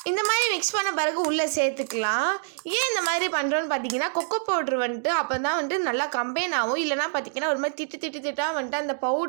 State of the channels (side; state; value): left; silent; digital silence